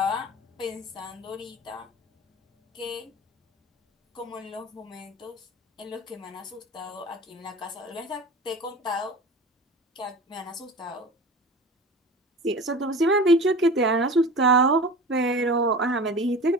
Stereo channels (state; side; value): normal; both; correlation 0.36